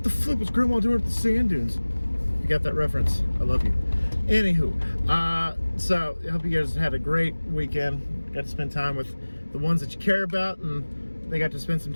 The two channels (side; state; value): both; inverted; correlation -1.00